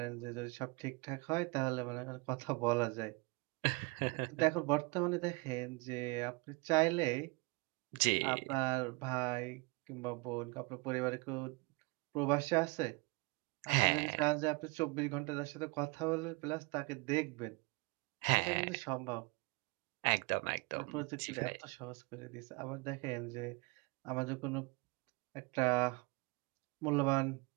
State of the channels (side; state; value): left; quieter; 28.3 dB